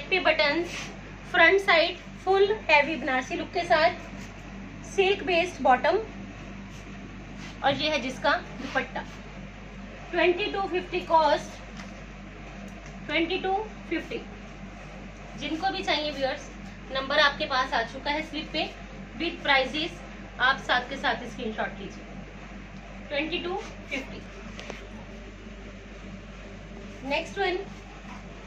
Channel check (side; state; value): both; identical; correlation 1.00